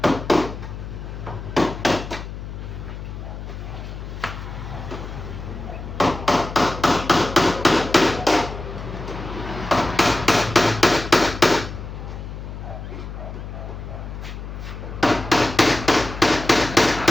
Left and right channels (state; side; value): noise; left; hum, 9 dB below the sound